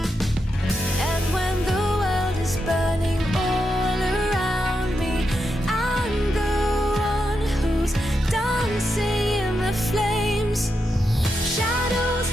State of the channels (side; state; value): both; normal; correlation 0.85